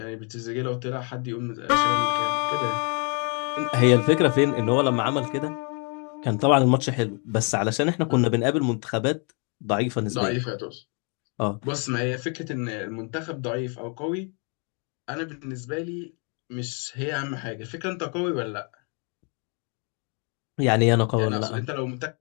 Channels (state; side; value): quieter; right; 37.9 dB